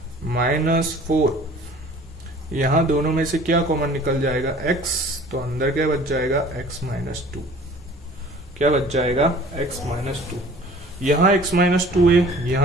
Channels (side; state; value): both; normal; correlation 0.49